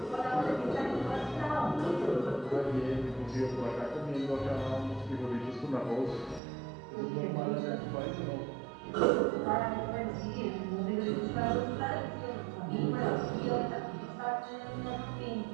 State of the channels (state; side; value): drops out; left; at 6.4 s